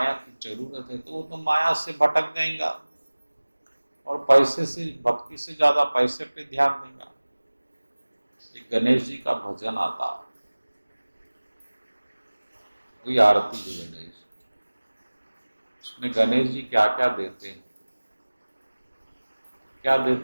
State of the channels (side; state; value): both; inverted; correlation -1.00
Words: की जरूरत है, तो वो तो माया से भटक जाएगा और पैसे से, भक्ति से ज्यादा पैसे पे ध्यान देगा। एक गणेश जी का भजन आता, वही आरती जो गणेश, उसमें गणेश जी क्या क्या देते हैं, क्या